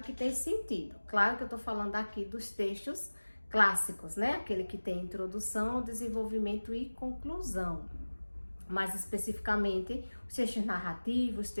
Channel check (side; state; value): both; inverted; correlation -1.00